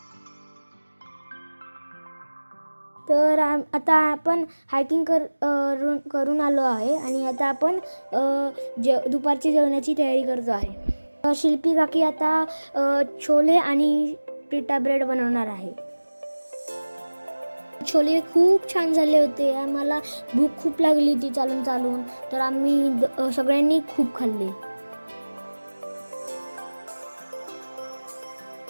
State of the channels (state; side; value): inverted; both; correlation -1.00